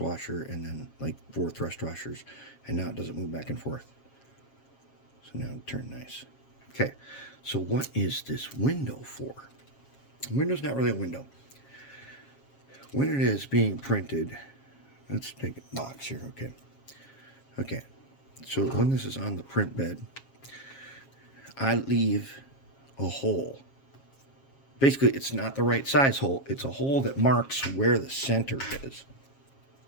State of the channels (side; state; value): right; late; 7.4 ms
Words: and then like 4 thrust washers, and now it doesn't move back and forth. So now it turned nice. Okay, so what is this window for? The window's not really a window. When it is being printed, let's take a box here. Okay, so when this is on the print bed, I leave a hole. Basically, it's not the right size hole. It's a hole that marks where the center is.